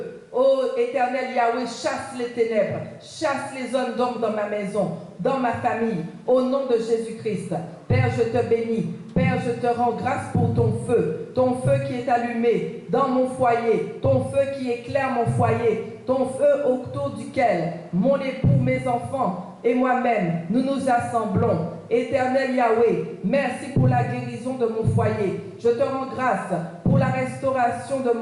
ô éternel Yahweh, chasse les ténèbres, chasse les hommes d'ombre dans ma maison, dans ma famille, au nom de Jésus-Christ. Père, je te bénis. Père, je te rends grâce pour ton feu qui est allumé dans mon foyer, ton feu qui éclaire mon foyer, ton feu autour duquel mon époux, mes enfants et moi-même, nous nous assemblons. Éternel Yahweh, merci pour la guérison de mon foyer. Je te rends grâce pour la restauration de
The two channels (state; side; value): identical; both; correlation 1.00